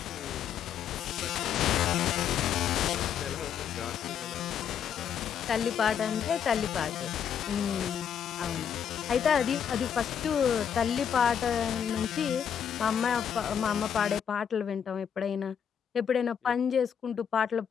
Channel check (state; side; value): quieter; right; 8.2 dB